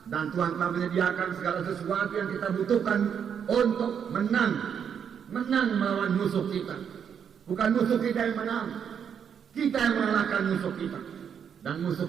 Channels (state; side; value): quieter; left; 7.8 dB